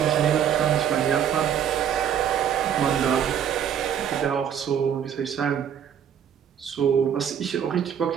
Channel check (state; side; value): quieter; left; 8.8 dB